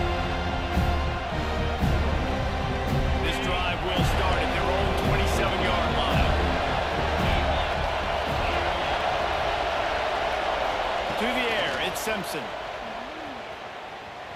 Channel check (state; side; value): identical; both; correlation 1.00